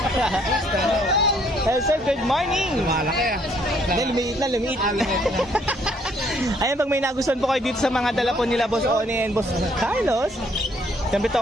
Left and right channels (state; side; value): normal; both; correlation 0.66